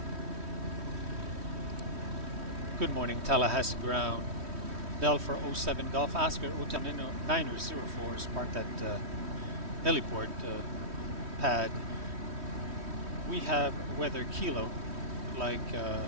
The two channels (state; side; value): late; left; 3.1 ms